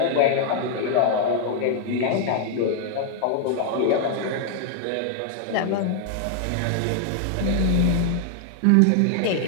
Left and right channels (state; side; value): different; both; correlation 0.00